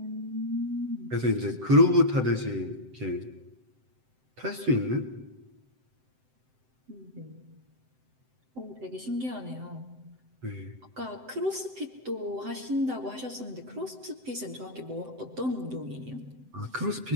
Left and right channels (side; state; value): left; late; 7.8 ms